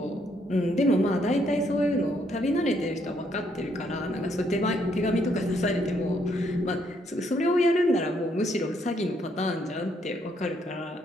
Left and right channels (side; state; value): both; normal; correlation 0.72